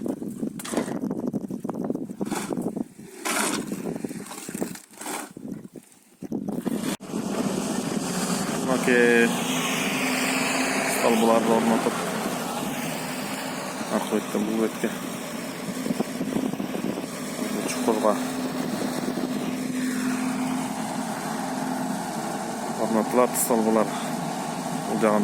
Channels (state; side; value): identical; both; correlation 1.00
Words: Ki stolbularni o'rnatib aqo'ytdan bu betga chuqurga o'rnatiladi. Stolbular bu